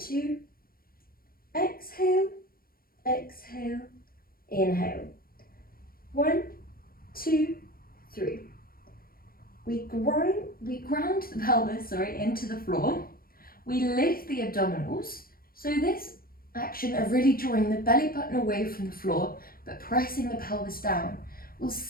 exhale, exhale, inhale. 1, 2, 3. We ground the pelvis, into the floor. We lift the abdominals. So this action of really drawing the belly button away from the floor, but pressing the pelvis down, will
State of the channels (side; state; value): right; late; 0.43 ms